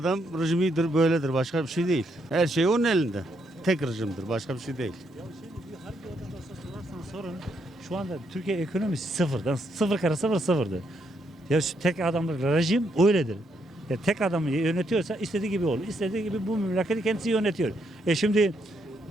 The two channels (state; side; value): normal; both; correlation 0.76